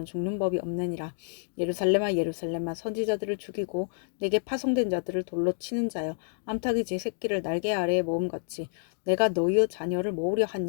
죽는 법이 없느니라. 예루살렘아 예루살렘아 선지자들을 죽이고 내게 파송된 자들을 돌로 치는 자여 암탉이 제 새끼를 날개 아래에 모음같이 내가 너희의 자녀를 모으려 한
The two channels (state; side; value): silent; right; digital silence